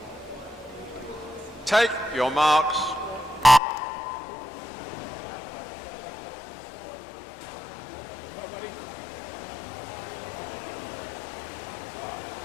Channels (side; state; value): right; drops out; at 3.6 s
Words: Take your marks.